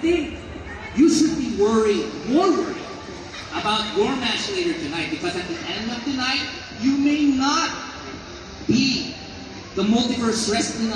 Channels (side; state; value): both; identical; correlation 1.00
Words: you should be more worried about your match later tonight, because at the end of the night, you may not be the Multiverse Wrestling